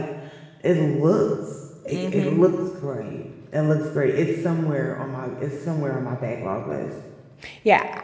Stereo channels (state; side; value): identical; both; correlation 1.00